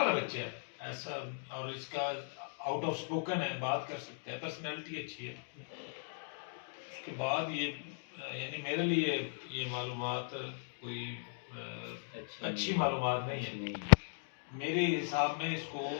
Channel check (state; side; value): silent; right; digital silence